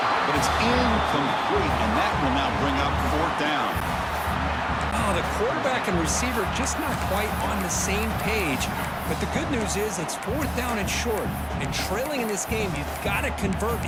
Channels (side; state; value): both; identical; correlation 1.00